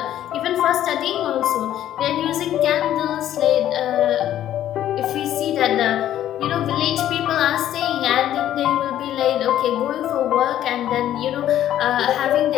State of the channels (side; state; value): right; quieter; 11.9 dB